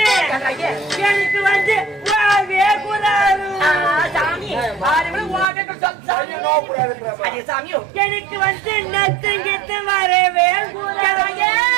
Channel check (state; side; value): drops out; left; at 5.5 s